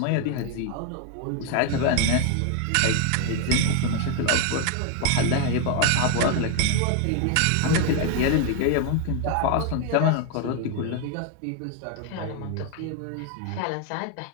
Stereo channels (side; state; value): both; different; correlation 0.00